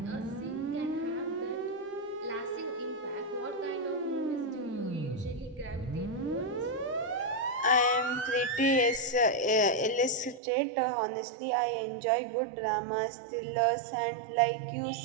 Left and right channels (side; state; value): left; drops out; at 10.4 s